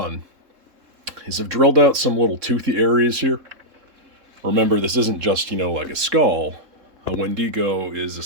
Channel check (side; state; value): left; late; 3.7 ms